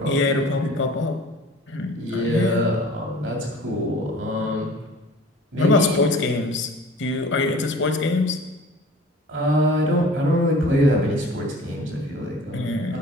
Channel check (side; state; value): both; normal; correlation 0.45